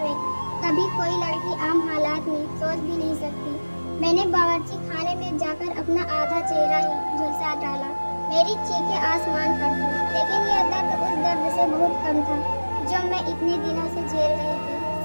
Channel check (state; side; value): inverted; both; correlation -1.00